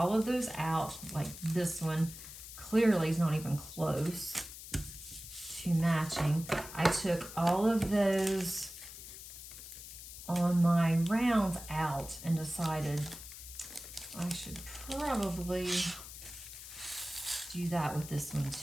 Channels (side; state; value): left; noise; hiss, 13 dB below the sound